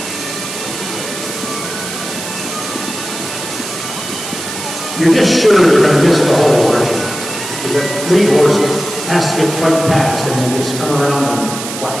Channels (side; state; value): right; noise; hiss, 8 dB below the sound